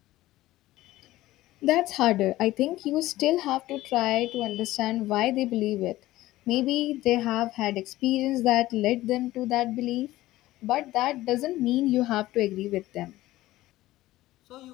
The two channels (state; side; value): quieter; right; 16.4 dB